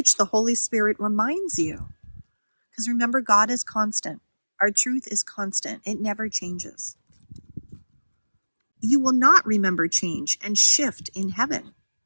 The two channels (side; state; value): both; inverted; correlation -1.00